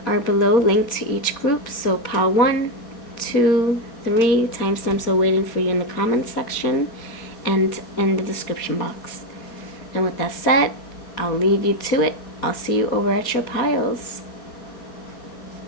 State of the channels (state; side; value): late; right; 4.3 ms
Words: are below, linked to each group. So pile 1, 2, 3, timestamps are waiting for you in the comments section and in the description box. And with that said, I'll leave you to it. I'll see you over at your piles.